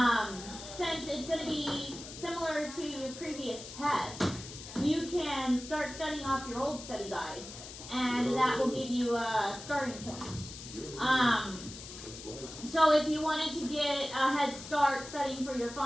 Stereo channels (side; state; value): left; noise; hiss, 13 dB below the sound